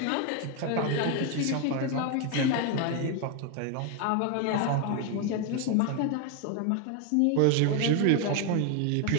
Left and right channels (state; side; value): different; both; correlation 0.01